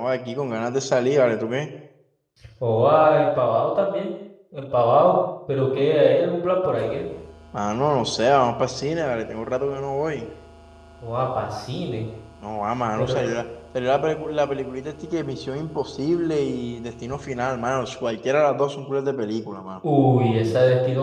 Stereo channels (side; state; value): both; identical; correlation 1.00